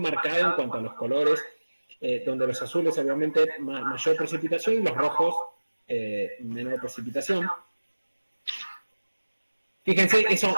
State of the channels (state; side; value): inverted; both; correlation -1.00